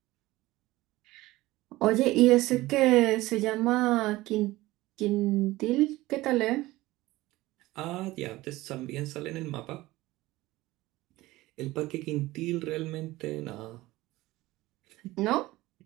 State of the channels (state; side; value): quieter; left; 18.4 dB